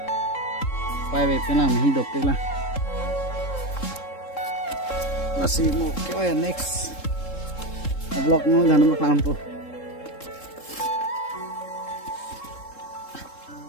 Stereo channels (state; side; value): late; right; 3.7 ms